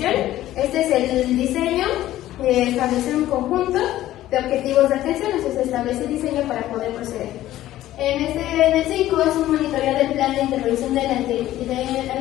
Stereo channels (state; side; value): quieter; right; 14.2 dB